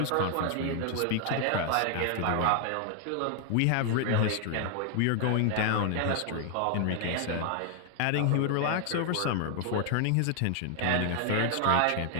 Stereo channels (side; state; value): both; different; correlation 0.00